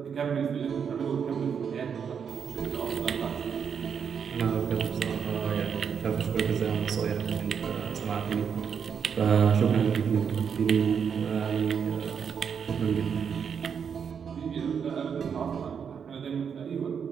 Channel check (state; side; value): quieter; left; 7.1 dB